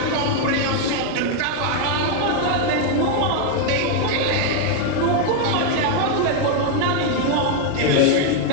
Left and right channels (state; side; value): different; both; correlation 0.01